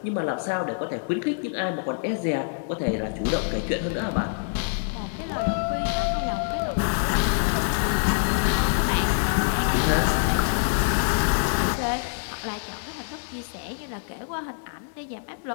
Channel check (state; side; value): silent; right; 57 dB below the other